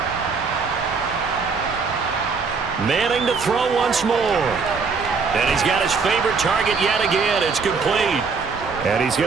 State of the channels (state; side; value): quieter; left; 4.9 dB